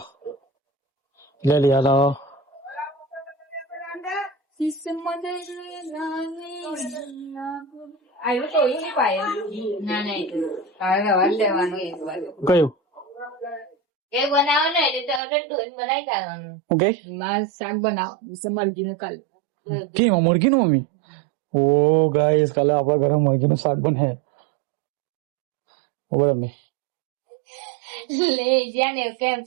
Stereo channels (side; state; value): left; drops out; at 15.2 s